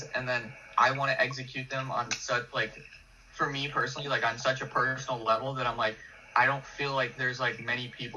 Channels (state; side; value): identical; both; correlation 1.00